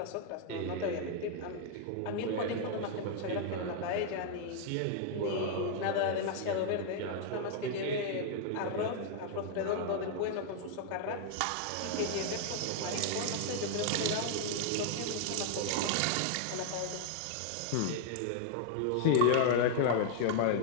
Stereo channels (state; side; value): different; both; correlation 0.00